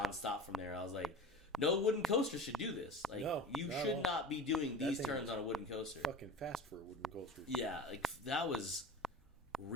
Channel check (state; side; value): normal; both; correlation 0.34